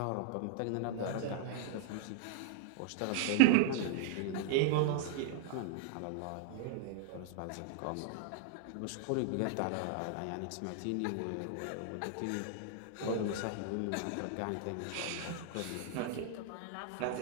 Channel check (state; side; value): different; both; correlation 0.00